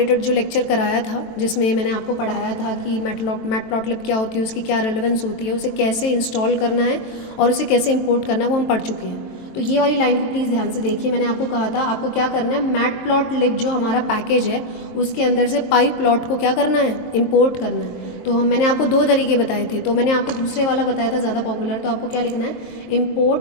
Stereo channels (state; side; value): late; right; 23 ms